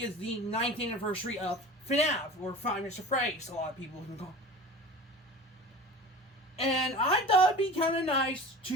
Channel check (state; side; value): normal; both; correlation 0.37